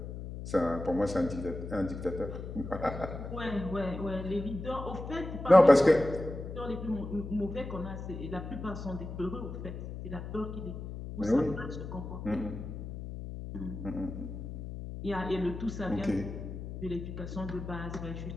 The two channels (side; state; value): left; noise; hum, 8 dB below the sound